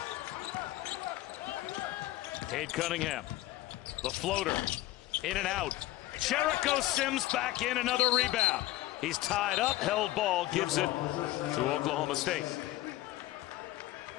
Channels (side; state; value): right; quieter; 16.4 dB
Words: Cade Cunningham, the floater, in and out. Jericho Sims back in, another rebound. He's tied up, held ball, gives it to Oklahoma State.